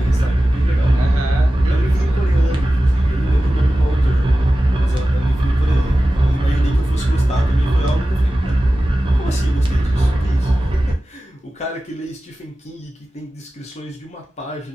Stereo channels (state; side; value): normal; both; correlation 0.95